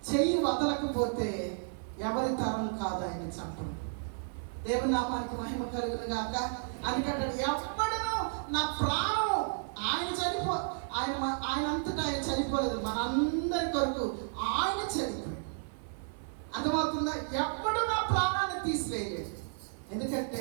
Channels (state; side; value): silent; left; 56 dB below the other